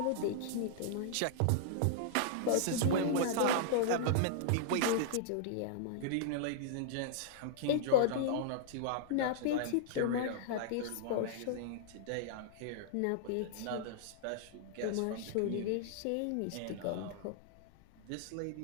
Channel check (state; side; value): different; both; correlation -0.01